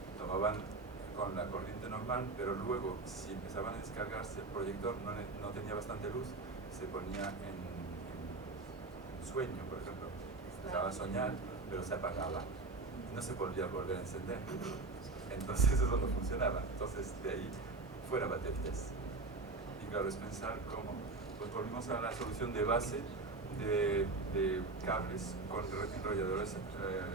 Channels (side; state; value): left; quieter; 3.5 dB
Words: tomaban con la corriente normal, pero luego, si empezaban a descargarse, el proyector no tenía bastante luz, se ponía en sueño, por ejemplo. Empezaba a soñar, pero se apagaba. No se podía volver a encender. Entonces eso no funcionaba. Entonces de ahí fuera baterías. Y claro, es pensar cómo. Pues volvimos a la solución de base de cables con enrolladores